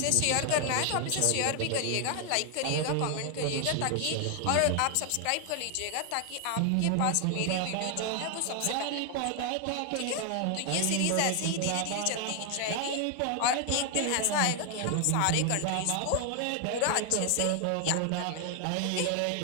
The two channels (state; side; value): different; both; correlation 0.00